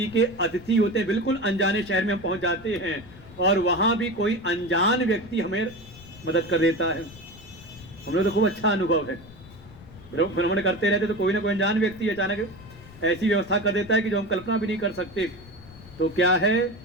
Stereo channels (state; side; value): noise; left; rumble, 20 dB below the sound